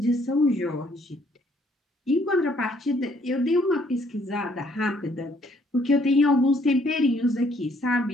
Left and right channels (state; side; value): normal; both; correlation 0.65